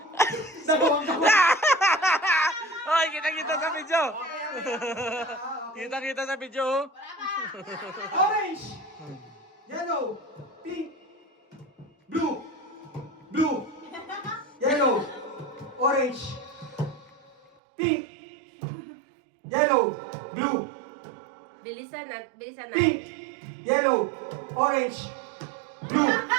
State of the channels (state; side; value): drops out; left; at 17.5 s